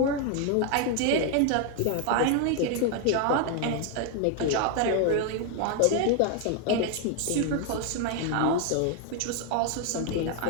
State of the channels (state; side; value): different; both; correlation 0.01